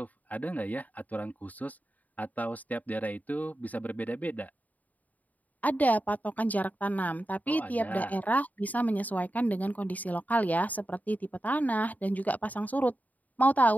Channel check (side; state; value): right; late; 0.076 ms